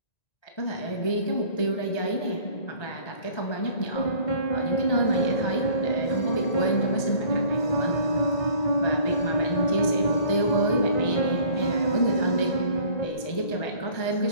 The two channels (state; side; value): late; right; 1.9 ms